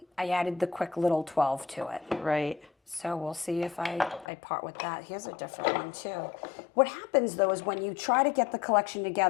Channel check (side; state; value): right; drops out; at 4.2 s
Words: I added the quick little 12 to it. Right. So we'll see if I part with that. Here's a different one too. What happens though is when you try to get the collection